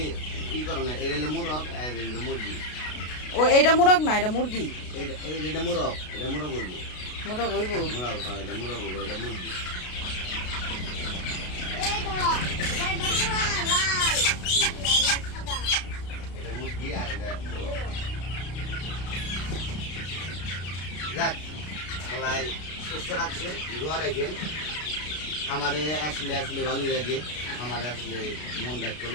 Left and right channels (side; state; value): right; late; 33 ms